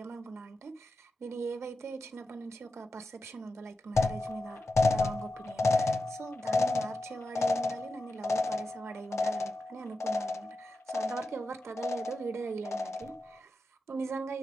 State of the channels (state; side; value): normal; both; correlation 0.89